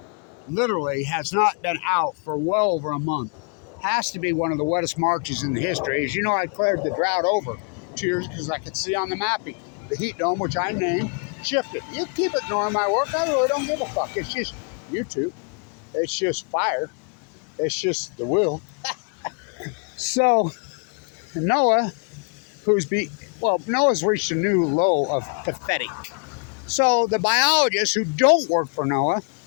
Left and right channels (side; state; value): right; quieter; 39.4 dB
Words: Literally has not been out for well over a month. Has to be one of the wettest Marches in the history. As you know, I cleared the drought over 2 years because I could see on the mapping the heat dome, which I named, shifted. You keep ignoring my work. I really don't give a fuck. It's just YouTube. It's just fire. It's just the will. So NOAA, NOAA's reached a new low of pathetic. So the biologists who don't work for NOAA